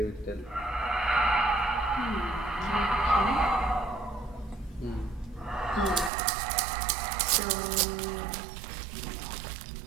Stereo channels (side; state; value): left; drops out; at 6.1 s